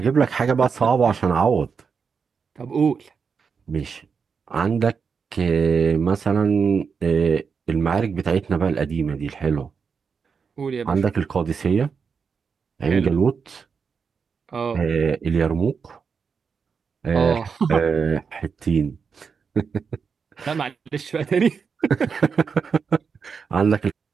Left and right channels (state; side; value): quieter; left; 5.8 dB